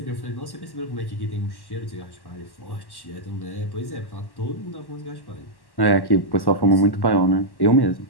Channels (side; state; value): right; late; 1.1 ms